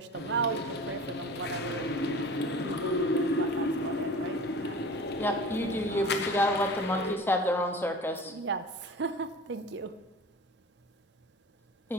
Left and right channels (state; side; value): normal; both; correlation 0.38